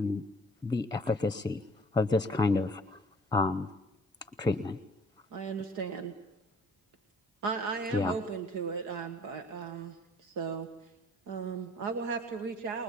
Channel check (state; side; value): normal; both; correlation 0.54